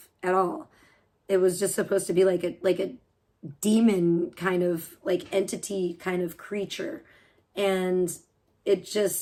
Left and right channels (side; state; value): both; identical; correlation 1.00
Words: at all. It was just supposed to be like a demon kind of entity kind of creature. And